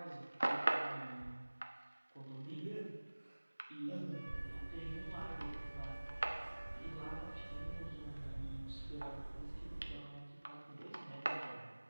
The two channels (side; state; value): both; inverted; correlation -1.00